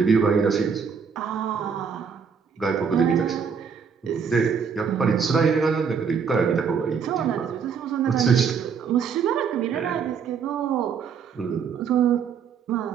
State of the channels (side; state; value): left; quieter; 6.4 dB